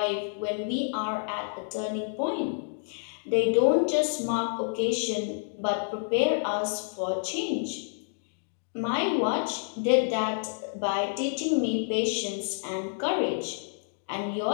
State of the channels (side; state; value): right; silent; digital silence